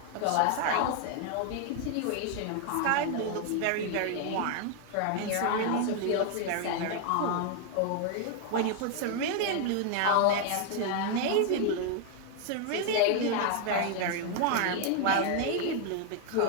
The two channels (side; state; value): both; different; correlation 0.00